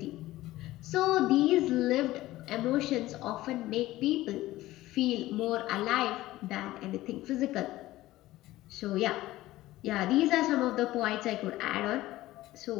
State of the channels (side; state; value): right; quieter; 16.6 dB